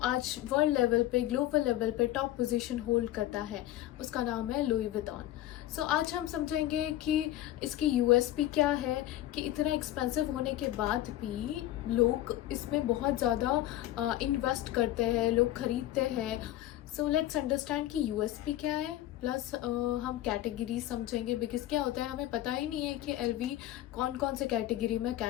वर्ल्ड लेवल पे, ग्लोबल लेवल पे टॉप पोजीशन होल्ड करता है उसका नाम है लुई विटॉन। सो आज हम समझेंगे कि इसकी यूएसपी क्या है कि इतना एक्सपेंसिव होने के बाद भी लोग इसमें बहुत ज़्यादा इन्वेस्ट करते हैं, लोग खरीदते हैं। सो लेट्स अंडरस्टैंड कि यूएसपी क्या है, प्लस हम कैटेगरी समझेंगे बिकॉज क्या होता है हमें पता ही नहीं है कि एलवी कौन कौन से कैटेगरी में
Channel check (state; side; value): quieter; right; 14.3 dB